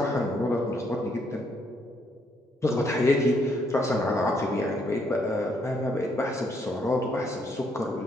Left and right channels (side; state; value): both; normal; correlation 0.72